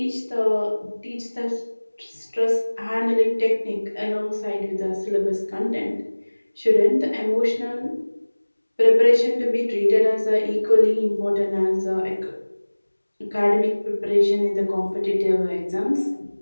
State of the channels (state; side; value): inverted; both; correlation -1.00